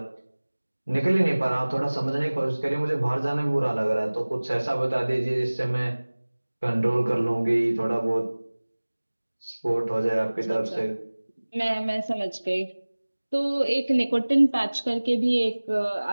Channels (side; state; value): both; inverted; correlation -1.00